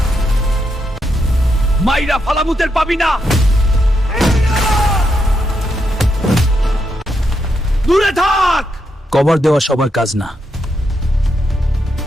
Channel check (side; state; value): both; normal; correlation 0.81